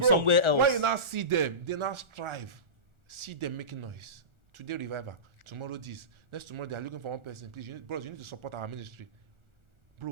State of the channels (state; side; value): late; left; 1.4 ms